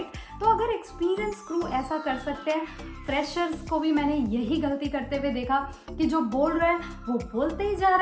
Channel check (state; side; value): identical; both; correlation 1.00